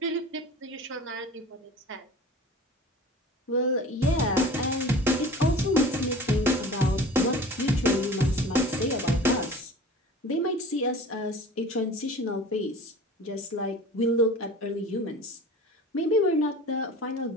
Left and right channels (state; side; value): normal; both; correlation 0.40